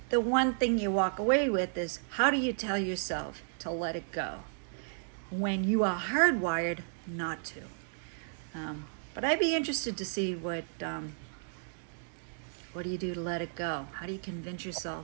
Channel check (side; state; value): left; silent; digital silence